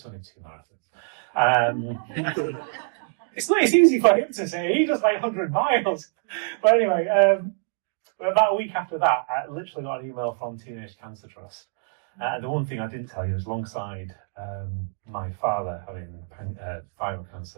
only 2 marathons. It's easy for him to say. He does like 100 miles. But anyway, about a week after that, I literally got an email from Teenage Cancer Trust. The one thing I didn't tell you is alongside my father having thyroid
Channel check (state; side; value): silent; left; digital silence